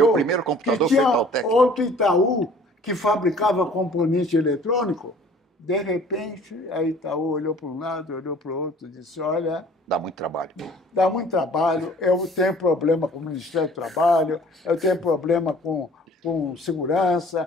primeiro computador que foi tinha Itautec. outro Itaú, que fabricava componente eletrônico. De repente, a Itaú olhou para um lado, olhou para o outro, disse, olha... Dá muito trabalho. Dá muito trabalho, eu tenho problema com o Ministério do Trabalho, eu tenho problema com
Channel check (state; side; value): normal; both; correlation 0.51